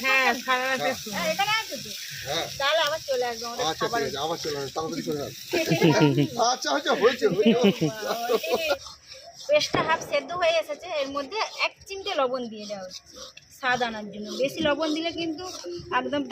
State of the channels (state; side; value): identical; both; correlation 1.00